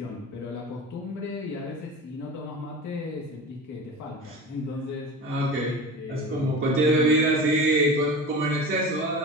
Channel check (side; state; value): both; normal; correlation 0.32